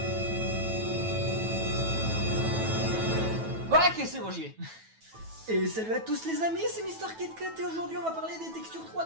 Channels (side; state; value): left; late; 9.2 ms